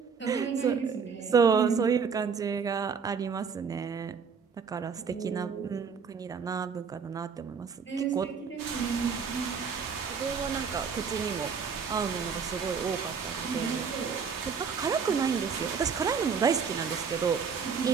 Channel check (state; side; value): quieter; left; 6.0 dB